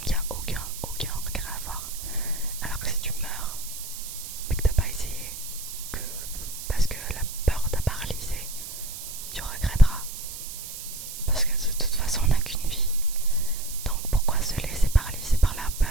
il n'y a aucun regret à avoir. Alors que si tu meurs mais que t'as pas essayé, que parce que la peur t'a paralysé, tu regretteras. Parce que de toute façon on n'a qu'une vie. Donc pourquoi se laisser paralyser par la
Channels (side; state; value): right; noise; hiss, 9 dB below the sound